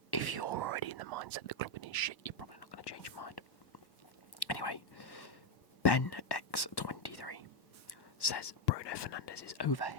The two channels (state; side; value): late; right; 1.1 ms